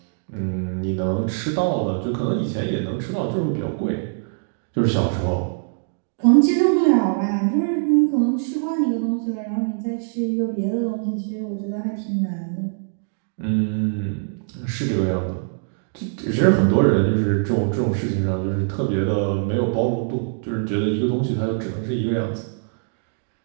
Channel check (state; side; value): silent; left; digital silence